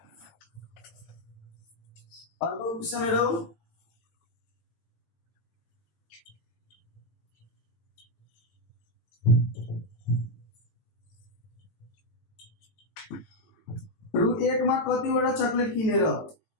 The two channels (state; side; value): late; right; 18 ms